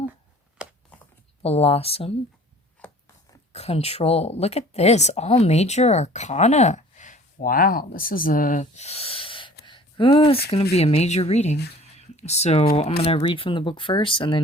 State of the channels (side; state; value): both; normal; correlation 0.49